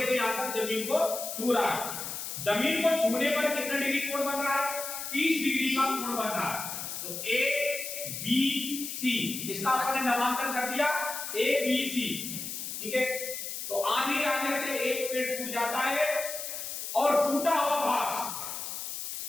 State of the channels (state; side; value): noise; left; hiss, 6 dB below the sound